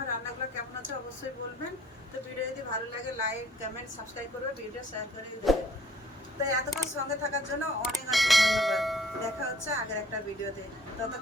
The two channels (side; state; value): both; normal; correlation 0.57